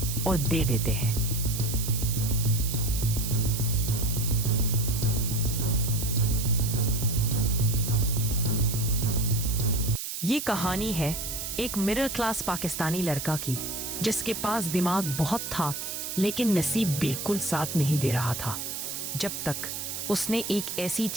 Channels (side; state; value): right; noise; hiss, 5 dB below the sound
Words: और दे देते हैं। ये कहानी है एक मिडिल क्लास पाकिस्तानी लड़का की, जिसके पास दिमाग बहुत था लेकिन नसीब बिल्कुल साथ नहीं दे रहा था, जब तक उसने एक ऐसी